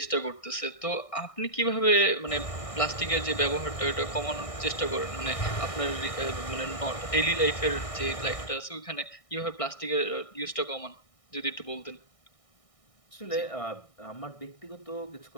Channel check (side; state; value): right; late; 1.6 ms